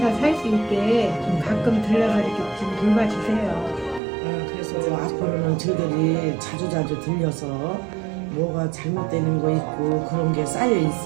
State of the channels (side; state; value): left; drops out; at 4.0 s